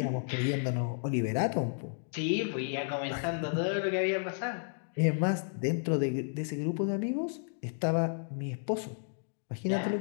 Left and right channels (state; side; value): silent; right; digital silence